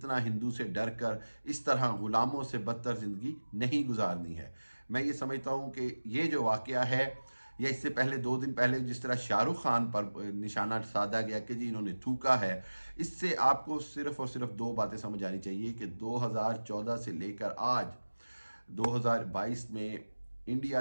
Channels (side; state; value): both; inverted; correlation -1.00